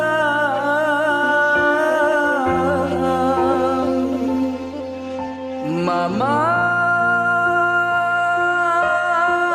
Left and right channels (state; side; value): identical; both; correlation 1.00